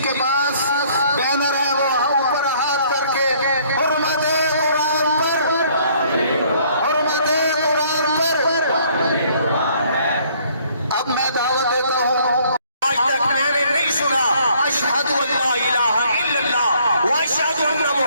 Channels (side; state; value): both; inverted; correlation -0.62